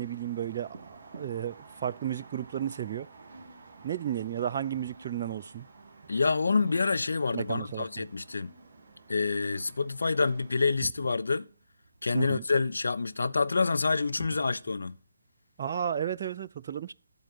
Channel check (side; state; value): both; inverted; correlation -0.82